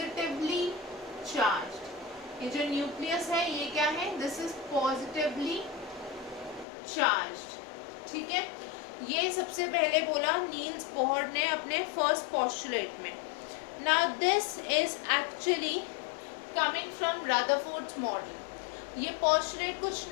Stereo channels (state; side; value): drops out; right; at 6.7 s